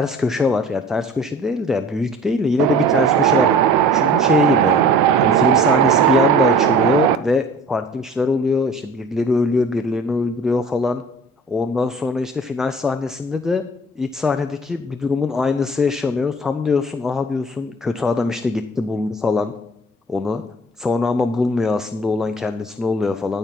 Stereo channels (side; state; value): both; normal; correlation 0.46